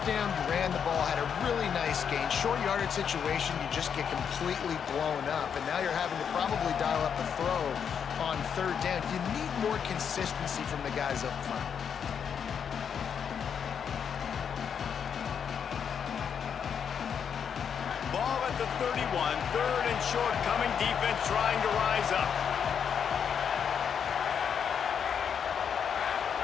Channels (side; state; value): right; quieter; 7.5 dB